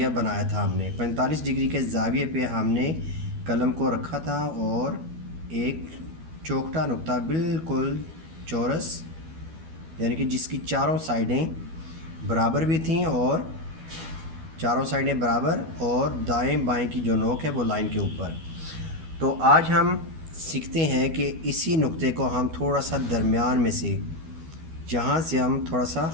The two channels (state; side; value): late; left; 12 ms